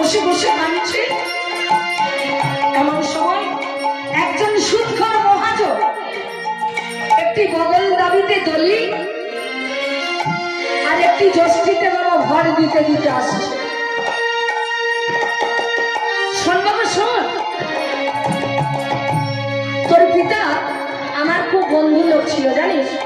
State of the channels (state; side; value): identical; both; correlation 1.00